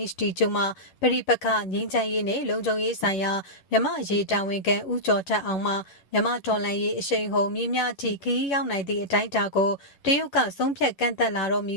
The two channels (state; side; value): late; right; 10 ms